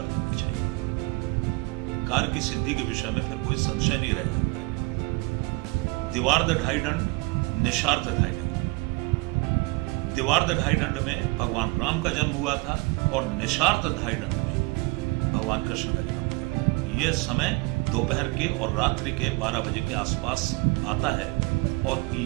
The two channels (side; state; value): left; quieter; 25.4 dB